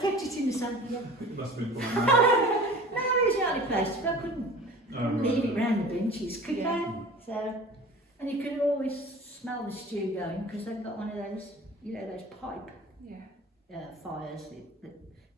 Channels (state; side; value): normal; both; correlation 0.42